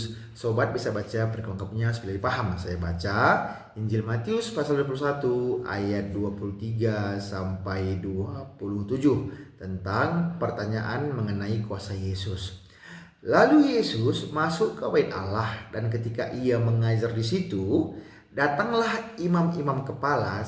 Sobat bisa baca perlengkapnya supaya paham. Saya baca Injil Matius pasal 21 ayat 23 sampai 27 tentang pertanyaan mengenai kuasa Yesus. Lalu Yesus masuk ke bait Allah, dan ketika ia mengajar di situ, datanglah imam-imam kepala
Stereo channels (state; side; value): identical; both; correlation 1.00